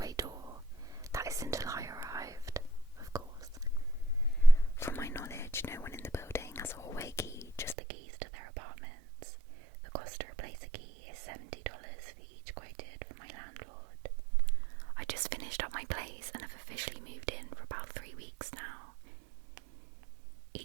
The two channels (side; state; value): left; drops out; at 7.8 s